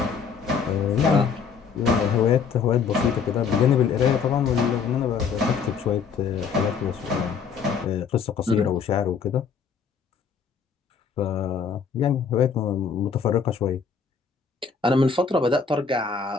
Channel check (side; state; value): right; quieter; 6.0 dB